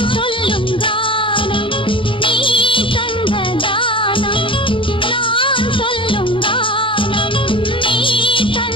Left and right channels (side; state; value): right; late; 0.25 ms